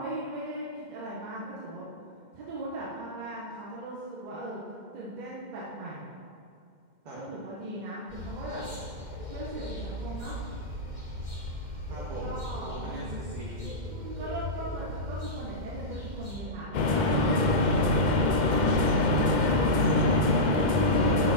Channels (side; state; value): left; late; 2.1 ms